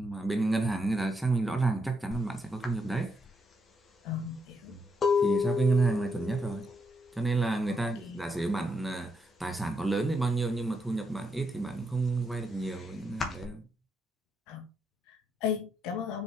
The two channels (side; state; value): both; normal; correlation 0.79